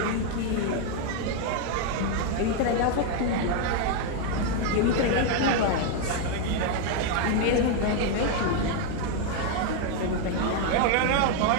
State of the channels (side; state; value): both; different; correlation 0.01